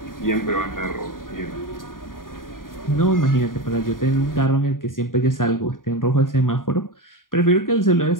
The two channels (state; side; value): late; right; 0.90 ms